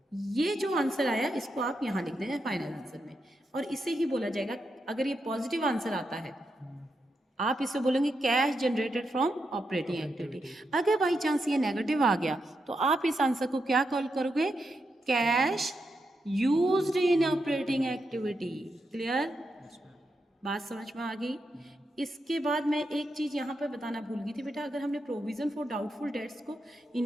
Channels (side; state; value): both; normal; correlation 0.84